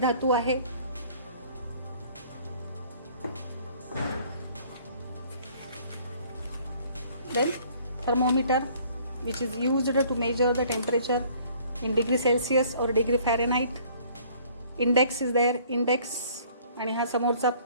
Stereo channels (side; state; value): both; inverted; correlation -0.56